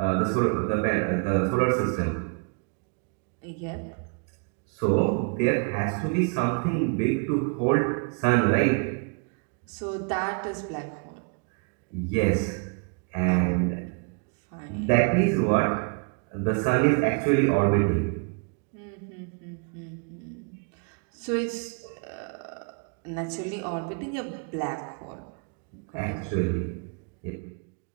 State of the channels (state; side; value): quieter; left; 36.7 dB